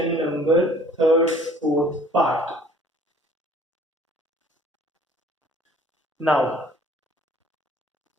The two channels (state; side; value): normal; both; correlation 0.54